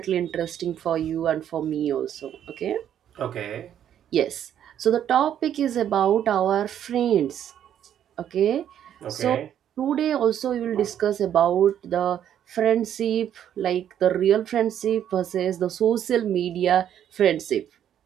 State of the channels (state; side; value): quieter; left; 10.1 dB